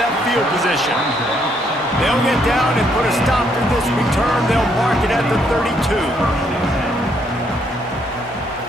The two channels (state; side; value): normal; both; correlation 0.71